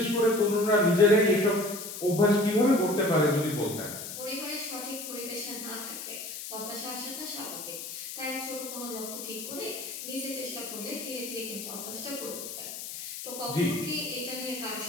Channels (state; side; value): noise; left; hiss, 8 dB below the sound